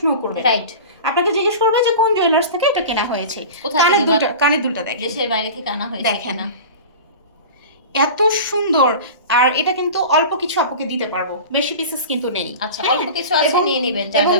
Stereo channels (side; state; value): both; inverted; correlation -0.34